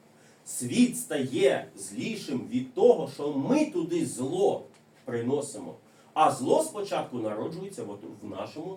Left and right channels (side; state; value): both; identical; correlation 1.00